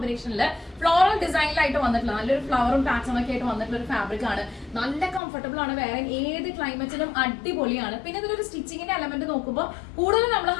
ഫ്ലോറൽ ഡിസൈനിലായിട്ട് വന്നിട്ടുള്ള നല്ലൊരു ഫ്ലവറും പാറ്റേണും ഒക്കെ ആയിട്ട് വന്നിട്ടുള്ള ഒരു ഫാബ്രിക് ആണ്. നല്ല കംഫർട്ടബിൾ ആണ്, വേറെ ഏത് ക്ലൈമറ്റിലും അടിപൊളിയാണ്. പിന്നെ ഇതിലൊരു സ്റ്റിച്ചിങ്ങിന്റെ എലമെന്റ് നോക്കുമ്പോൾ കൂടുതൽ നമ്മൾ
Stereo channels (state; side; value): drops out; right; at 5.2 s